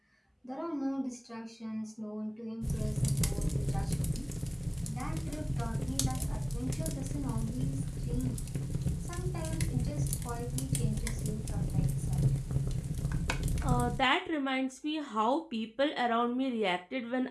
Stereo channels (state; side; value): identical; both; correlation 1.00